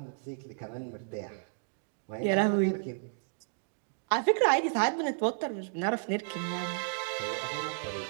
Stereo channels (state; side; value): silent; left; digital silence